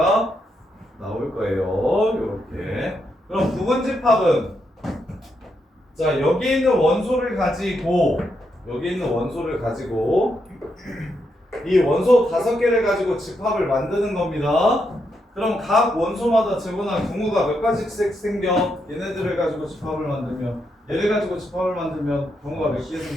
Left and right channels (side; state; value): both; normal; correlation 0.81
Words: 나올 거예요. 이렇게. 그럼 부분집합은 자 여기 있는 원소를 가지고 이 원소 5개를 가지고 집합을 만드는 겁니다. 그럼 각 원소마다 재고나 경우가 몇 가지씩 생겨? 얘네들을 가지고 집합을 만들면 얘를 가지고 집합을 만들면 경우가 몇 개